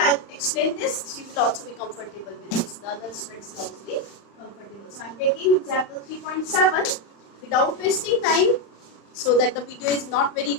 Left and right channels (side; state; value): right; late; 35 ms